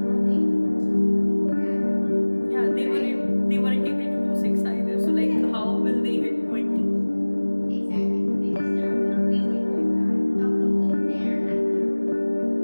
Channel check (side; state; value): both; inverted; correlation -1.00